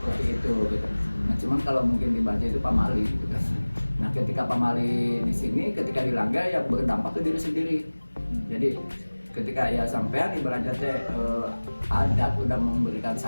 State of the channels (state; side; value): inverted; both; correlation -1.00